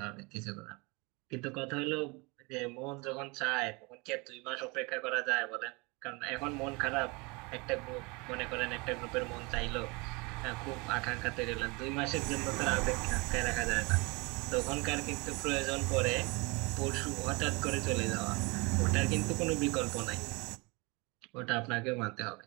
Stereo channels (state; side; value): quieter; left; 27.2 dB